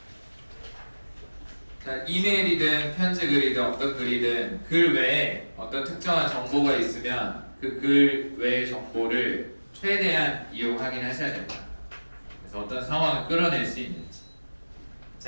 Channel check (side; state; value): both; inverted; correlation -1.00